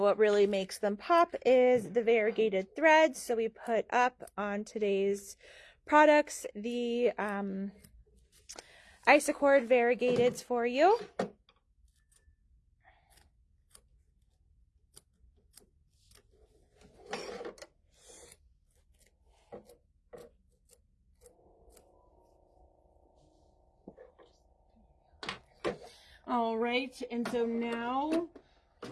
what really makes them pop is the variegated threads. So we put up on today's products the Isacord variegateds for you. All right, and so now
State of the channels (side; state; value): both; identical; correlation 1.00